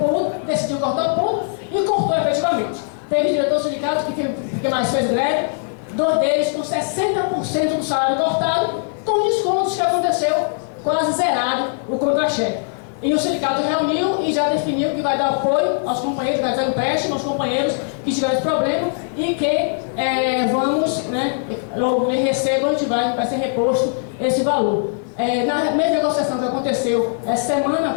decidiu cortar o ponto e cortou efetivamente. Teve diretor sindicato que mais fez greve, 2 deles com 60% do salário cortado, com descontos que aconteceu quase zerado o contra-cheque. E o sindicato reuniu e já definiu que vai dar apoio aos companheiros, vai dar empréstimo aos companheiros que tiveram esse problema e que vamos, né, logo que recebam, vai ser reposto esse valor. Na mesma negociação que aconteceu essa semana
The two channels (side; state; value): right; silent; 55 dB below the other